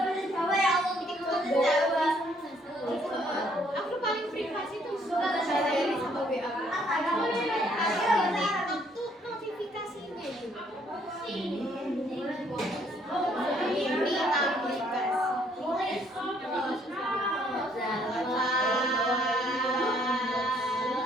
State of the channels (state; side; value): normal; both; correlation 0.66